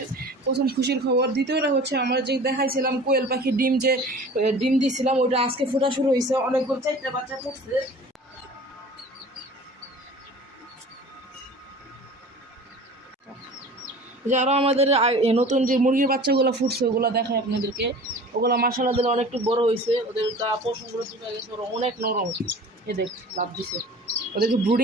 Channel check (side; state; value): both; normal; correlation 0.42